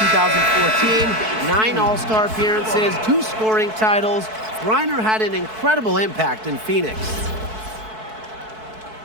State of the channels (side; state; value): left; late; 4.6 ms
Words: 2014, 9 All-Star appearances, 2 scoring titles. Griner had an incredible impact in Phoenix.